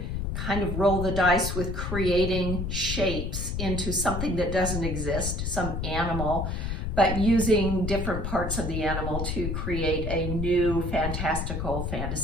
kind of roll the dice with creating shapes into something that doesn't exist, some animal, but using different parts of the animal to create a new fantastical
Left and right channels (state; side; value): noise; left; rumble, 2 dB below the sound